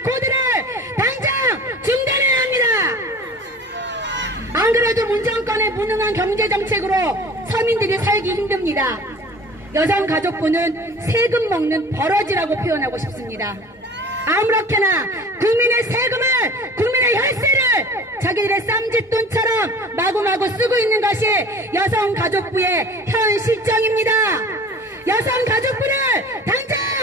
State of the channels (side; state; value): both; normal; correlation 0.43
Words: 코드를 당장 중단해야 합니다. 안 그래도 문정권의 무능한 경제정책으로 서민들이 살기 힘듭니다. 여성가족부는 세금 먹는 버러지라고 표현하고 싶습니다. 아무렇게나 국민의 세금을, 국민의 혈세를 자기들의 쌈짓돈처럼 마구마구 쓰고 있는 것이 여성가족부의 현 실정입니다. 여성가족부를 당장